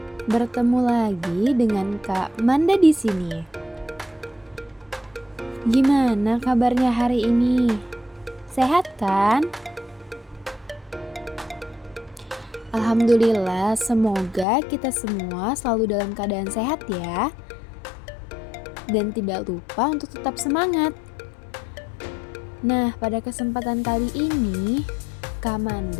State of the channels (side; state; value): right; drops out; at 14.5 s